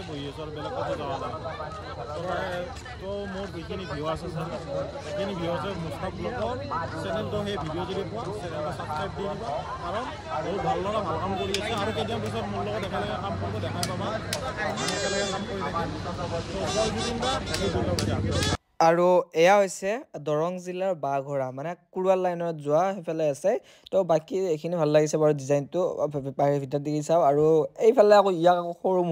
বহি আছোঁ আৰু বেলেগ কথা যোৱা নাই তো মোৰ যিখিনি ভিউ আছে সেইখিনি ভিউ আছে মুস্তাক ব্লগৰ চেনেলটো সেই ভিডিঅ' যদি পোৱা চেনেলটো ছাবস্ক্ৰাইব দি দিবা কাৰণ বহুত ভাল লগা ভাল কাম কৰি আছে আৰু কেইদিনমান পিছত মোৰ লগত একেলগে কাম কৰিব দেখাই পাবা একেলগে কাম কৰি থাকিম আৰু এয়া হৈছে দৰং জিলাৰ বাঘৰা মানে কুৰুৱাল লাইনত যোৱা সেইফালে আছে তো বাকী এইখিনি ভাল লাগিছে বাৰু ডিজাইনটো বাহিৰ ভিতৰত দেখি চাওঁ আৰু এইফালে আকৌ ইয়াক আকৌ সৰু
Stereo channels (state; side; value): identical; both; correlation 1.00